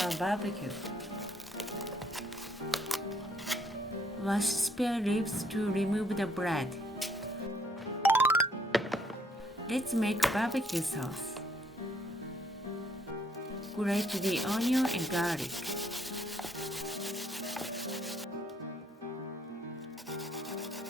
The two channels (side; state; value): both; normal; correlation 0.68